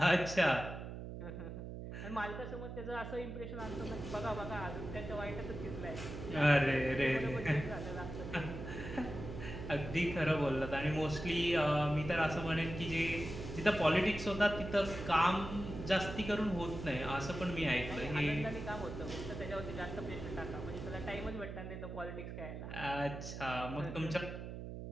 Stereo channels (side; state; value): right; noise; hum, 8 dB below the sound